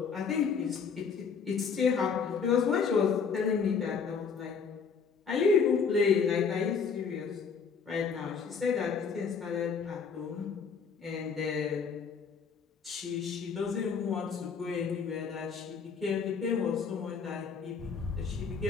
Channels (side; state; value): right; quieter; 5.8 dB